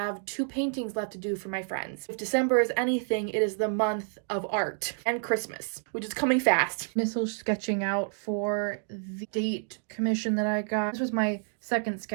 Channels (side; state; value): left; silent; 58 dB below the other